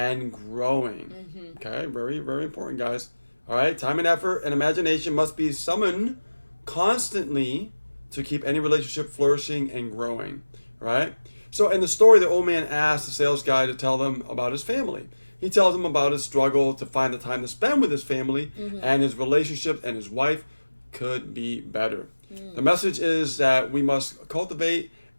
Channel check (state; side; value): inverted; both; correlation -1.00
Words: growing. Okay, very, very important, guys. All right, time and effort and imagination must be summoned constantly to keep any relationship flourishing and growing. Right? So in the story, the old man asked the sales guy to tell them about his family. He tells them about his struggle to find the time to spend with his family, and his relationship and his wife could be better. The message is that we must cultivate